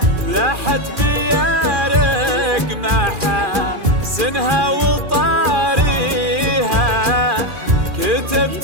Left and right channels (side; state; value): left; late; 2.4 ms